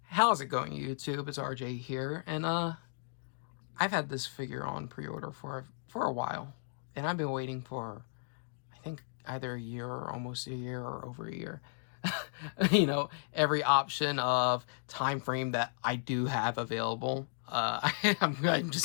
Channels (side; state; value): right; silent; digital silence